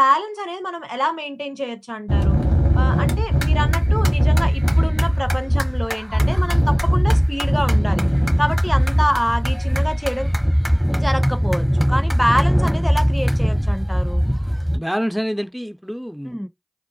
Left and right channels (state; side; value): identical; both; correlation 1.00